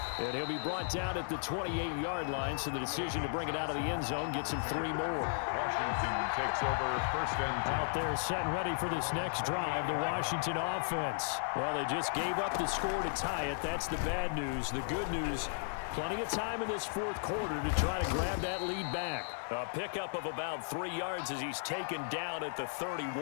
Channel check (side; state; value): right; silent; digital silence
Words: And he'll be brought down at the 28-yard line, so the decision to bring it out of the end zone gets him 3 more. Washington takes over first and 10. Out there set and ready for this next drive, the Washington offense. Well, they just gave up the score to tie it. That's the bad news. The good news, plenty of time in this fourth quarter to try to grab that lead back. A pickup of about 3 yards as he's taken down at the